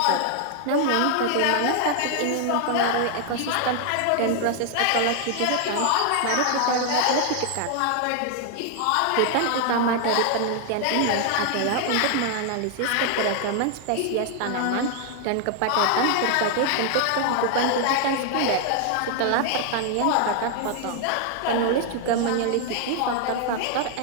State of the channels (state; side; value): different; both; correlation 0.00